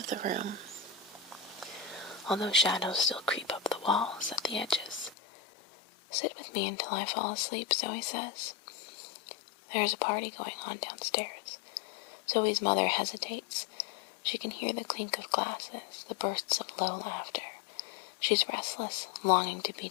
the room, although shadows still creep up the walls at the edges. "Sit with me until I fall asleep," Zoe says. There is a party going on downstairs. Zoe's mother hesitates. She can hear the clink of glasses, the bursts of low laughter. She's restless, longing to be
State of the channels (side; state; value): right; drops out; at 5.2 s